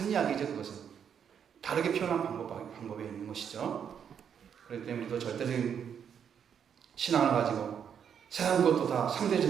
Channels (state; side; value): quieter; left; 8.0 dB